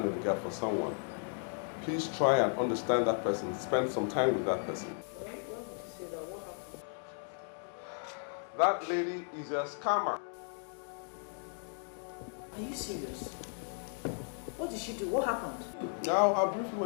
in the gap for someone, please try and understand that person. Spend some time with that person. Why would you say that? What happened? That lady is a scammer. Are you serious? What did she do? What happened? Now, I'll brief you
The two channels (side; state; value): right; silent; 54 dB below the other